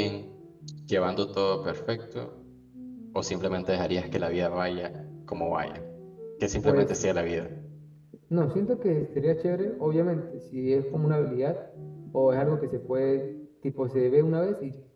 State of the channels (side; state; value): both; identical; correlation 1.00